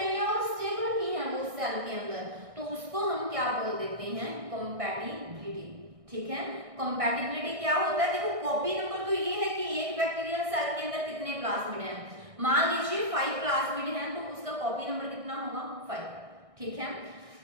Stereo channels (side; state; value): left; late; 1.6 ms